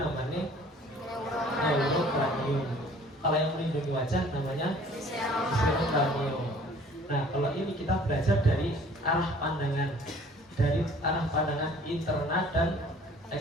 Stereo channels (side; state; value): both; normal; correlation 0.53